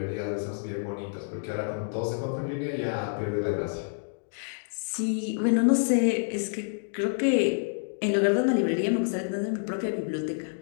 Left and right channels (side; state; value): right; silent; digital silence